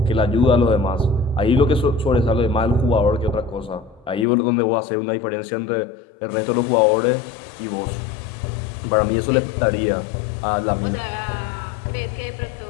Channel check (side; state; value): right; drops out; at 4.2 s